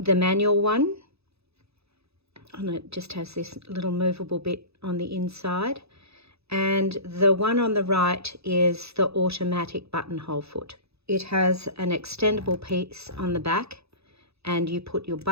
manual one, and it just has this little movable bit on the inside. And the one on the right is the automatic buttonhole foot. It has an extendable piece on the back, and you put your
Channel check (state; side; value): late; left; 0.79 ms